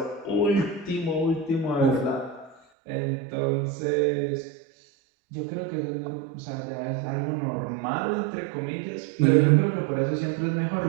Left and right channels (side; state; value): left; drops out; at 2.6 s